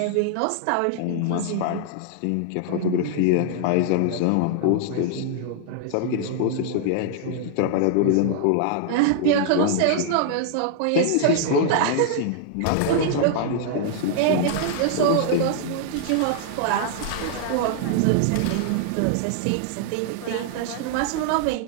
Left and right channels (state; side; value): different; both; correlation -0.01